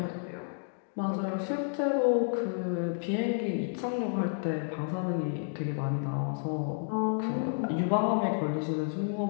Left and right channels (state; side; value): silent; right; digital silence